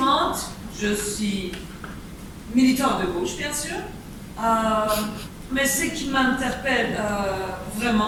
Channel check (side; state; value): both; identical; correlation 1.00